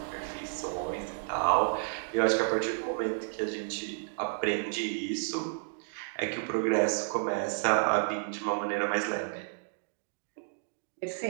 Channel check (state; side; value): silent; left; digital silence